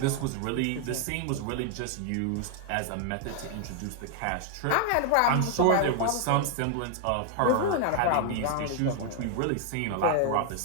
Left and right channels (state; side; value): different; both; correlation 0.00